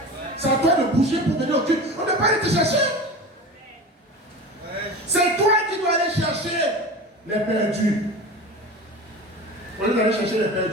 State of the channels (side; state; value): both; normal; correlation 0.31